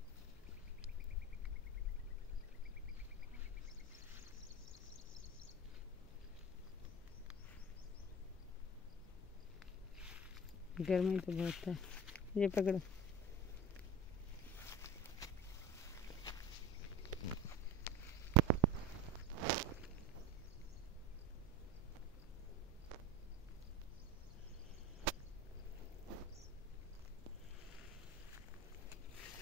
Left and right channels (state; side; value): normal; both; correlation 0.31